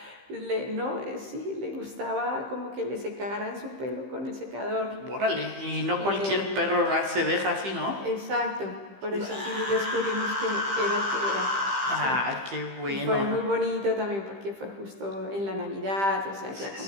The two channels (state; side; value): late; left; 15 ms